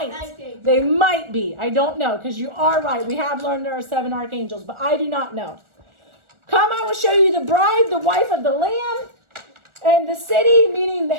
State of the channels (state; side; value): late; left; 1.4 ms